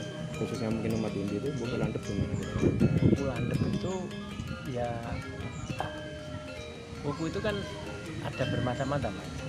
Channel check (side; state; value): both; identical; correlation 1.00